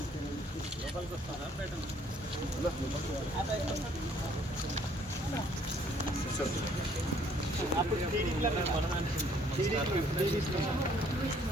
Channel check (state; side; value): normal; both; correlation 0.62